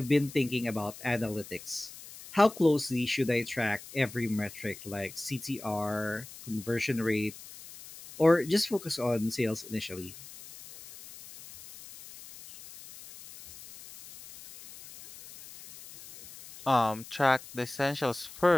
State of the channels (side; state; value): left; noise; hiss, 16 dB below the sound